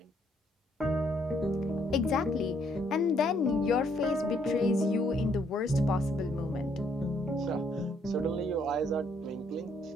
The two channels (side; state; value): both; normal; correlation 0.69